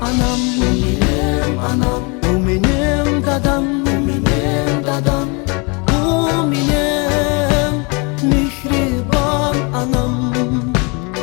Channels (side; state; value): right; quieter; 31.3 dB